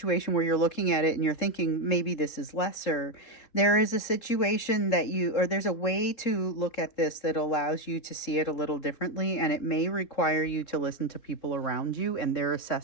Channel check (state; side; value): late; right; 3.7 ms